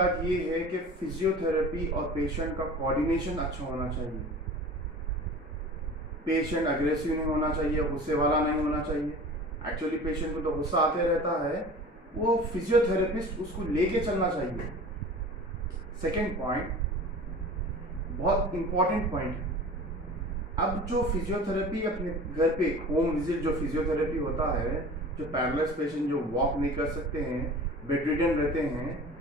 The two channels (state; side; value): normal; both; correlation 0.39